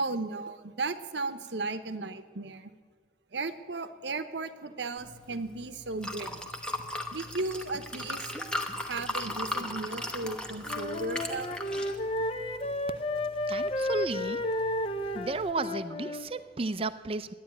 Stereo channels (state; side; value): normal; both; correlation 0.21